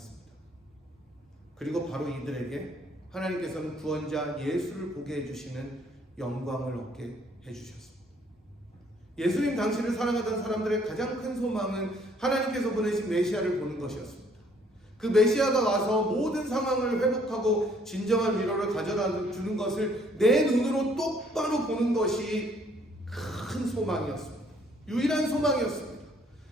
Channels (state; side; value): normal; both; correlation 0.63